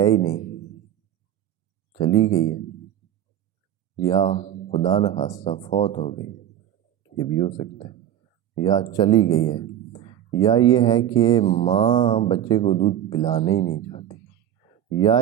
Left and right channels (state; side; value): quieter; left; 10.9 dB